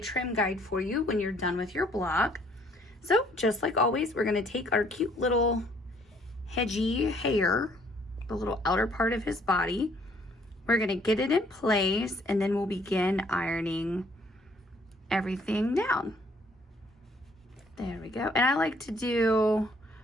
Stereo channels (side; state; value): both; normal; correlation 0.63